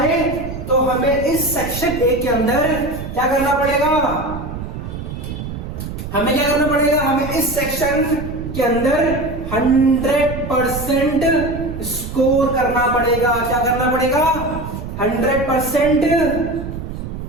तो हमें इस सेक्शन ए के अंदर क्या करना पड़ेगा, हमें क्या करना पड़ेगा, हमें इस सेक्शन के अंदर 100% स्कोर करना पड़ेगा। क्या करना पड़ेगा? 100%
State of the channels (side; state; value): right; noise; rumble, 8 dB below the sound